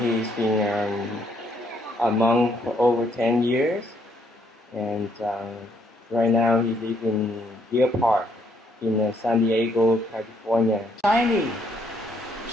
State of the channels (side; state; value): both; normal; correlation 0.70